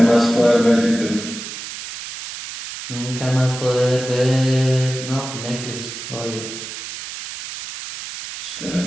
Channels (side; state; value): right; noise; hiss, 9 dB below the sound